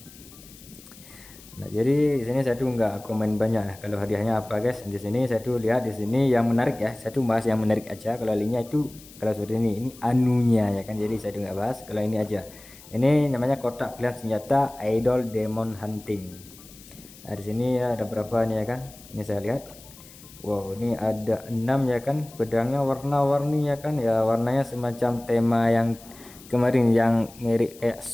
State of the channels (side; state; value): left; noise; hiss, 21 dB below the sound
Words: Nah jadi di sini saya tuh nggak komen banyak ya, kalau hadiahnya apa guys. Di sini saya tuh lihat di sini yang menarik ya, saya tuh bahas yang menarik aja. Kalau lainnya itu kalau seperti ini anunya ya kan, jadi saya tuh nggak bahas. Kalau ini aja, ini namanya kotak pilihan senjata idol demon hunting. Nah di sini ya ada berapa nih ya kan, ini saya lihat. Wow, ini ada 6 ya kan, pedangnya warna-warni ya kan ya, warnanya semacam tema yang kemarin yang mirip kayak